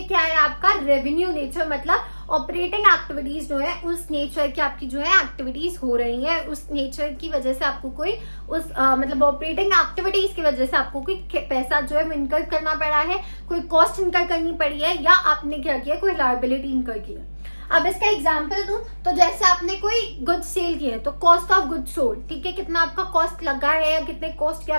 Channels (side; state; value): both; inverted; correlation -1.00